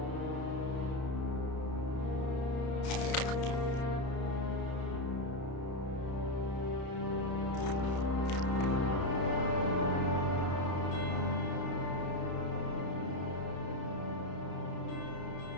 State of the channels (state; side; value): late; right; 32 ms